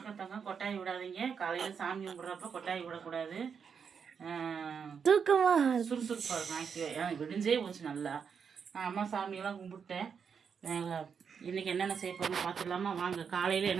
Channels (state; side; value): quieter; left; 6.6 dB